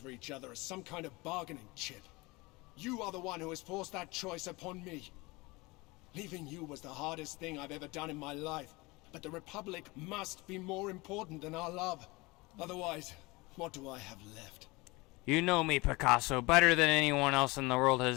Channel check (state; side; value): quieter; right; 23.7 dB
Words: each other as some kind of bargaining chip. You are the one who has forced that choice upon me. Leaving you was the hardest thing I've ever done in my life. But the Republic must be more important than our love. Otherwise, what do I have left? You know me, Picasso, better than anyone else in the world